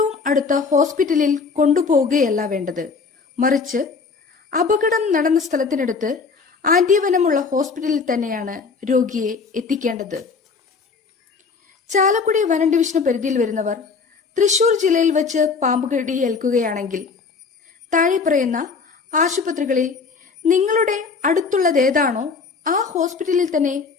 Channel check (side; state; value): right; quieter; 4.9 dB